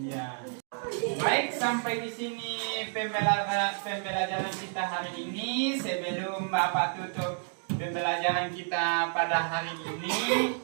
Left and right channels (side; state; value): left; silent; 58 dB below the other